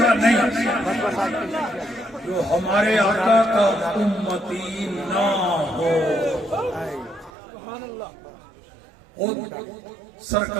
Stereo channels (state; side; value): drops out; left; at 7.3 s